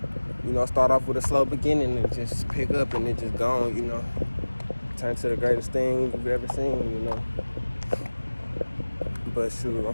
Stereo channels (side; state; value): both; inverted; correlation -1.00